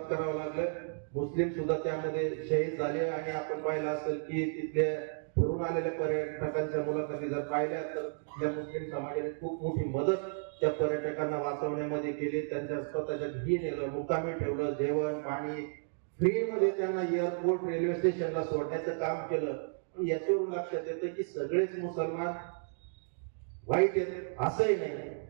लागलं. मुस्लिम सुद्धा त्यामध्ये शहीद झाले आणि आपण पाहिलं असेल की तिथले फिरून आलेल्या पर्यटकांच्या मुलाखती जर पाहिल्या तर त्या मुस्लिम समाजाने खूप मोठी मदत त्या पर्यटकांना वाचवण्यामध्ये केली. त्यांच्या स्वतःच्या घरी नेलं, मुक्कामी ठेवलं, जेवण पाणी फ्रीमध्ये त्यांना एअरपोर्ट रेल्वे स्टेशनला सोडण्याचं काम केलं. याच्यावरून लक्षात येतं की सगळेच मुसलमान वाईट आहेत असंही नाही.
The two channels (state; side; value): silent; left; digital silence